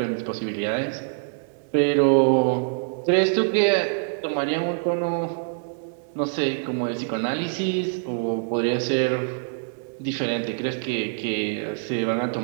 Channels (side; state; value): left; silent; 62 dB below the other